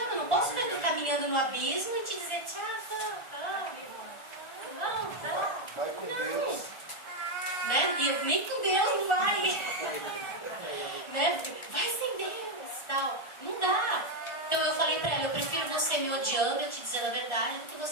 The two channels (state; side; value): late; right; 1.4 ms